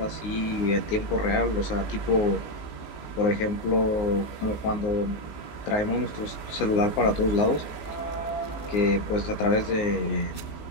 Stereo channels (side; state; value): right; late; 19 ms